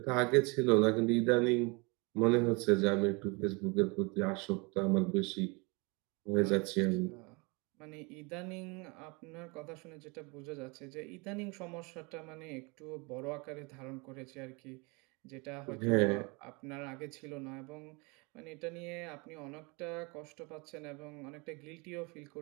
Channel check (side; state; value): left; quieter; 28.9 dB